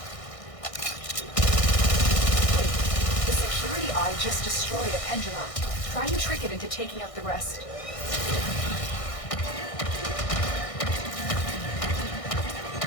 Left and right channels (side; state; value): right; late; 1.6 ms